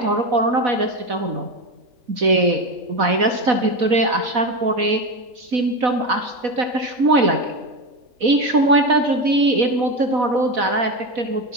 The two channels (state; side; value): late; left; 4.1 ms